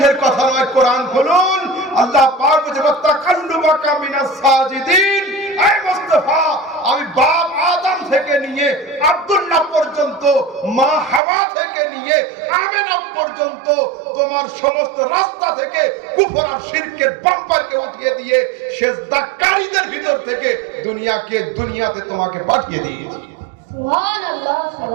কথা নয়, কোরআন খুলুন। আল্লাহ পাক বলে ওয়াতাকাল্লুবাকা মিনাস সাজিদিন। এই মুস্তাফা, আমি বাপ আদম থেকে নিয়ে আব্দুল্লাহ পর্যন্ত, মা হাওয়া থেকে নিয়ে আমেনা পর্যন্ত তোমার সমস্ত রাস্তা থেকে কুফর আর শিরকের বাম্পারকে উঠিয়ে দিয়ে সিজদাকারীদের ভিতর থেকে দুনিয়াতে তোমাকে পাঠিয়ে দিয়েছি। সুবহানাল্লাহ,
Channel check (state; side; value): drops out; left; at 11.2 s